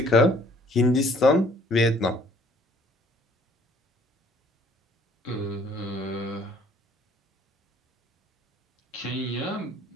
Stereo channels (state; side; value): normal; both; correlation 0.59